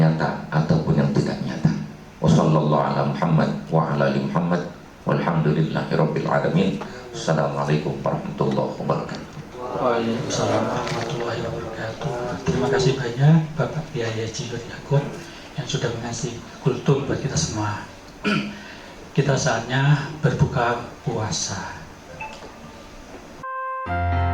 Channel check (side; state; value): both; identical; correlation 1.00